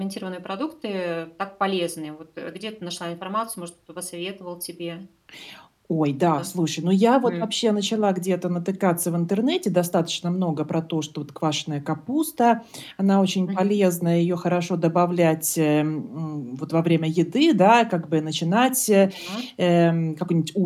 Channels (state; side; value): identical; both; correlation 1.00